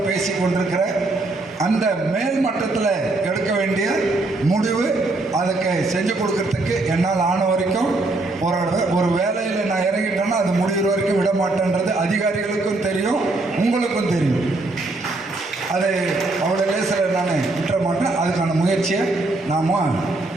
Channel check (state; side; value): quieter; left; 3.1 dB